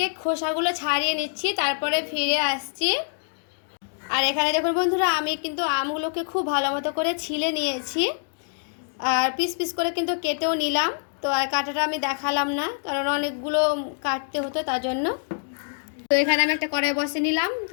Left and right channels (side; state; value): right; silent; digital silence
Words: খোসাগুলো ছাড়িয়ে নিচ্ছি, তারপরে ফিরে আসছি। আর এখানে দেখুন বন্ধুরা, আমি কিন্তু আমগুলোকে খুব ভালো মতো করে ছিলে নিয়েছি, আর পিস পিস করে কিন্তু কেটেও নিলাম। তো আর কাটাটা আমি দেখালাম না, কারণ অনেকগুলো কাটতে হতো তার জন্য। তো এখানে আমি একটা কড়াই বসে নিলাম,